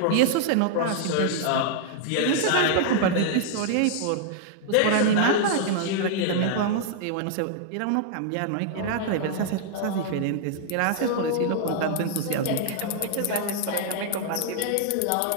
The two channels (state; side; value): different; both; correlation -0.01